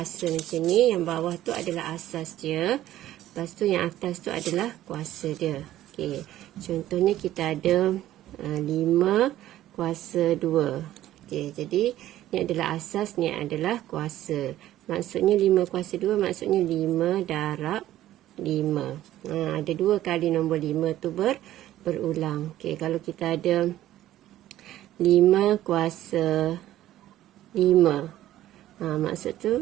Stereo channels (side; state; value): left; quieter; 13.6 dB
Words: macam ni, yang bawah tu adalah asas dia. Lepas tu yang atas tu adalah kuasa dia. Okey, contohnya kita ada 5 kuasa 2. Okey, jadi ni adalah asas, ni adalah kuasa. Maksudnya 5 kuasa 2 maksudnya 5 darab 5. Ada 2 kali nombor 5 tu berulang. Okey, kalau kita ada 5 kuasa 5. Maksud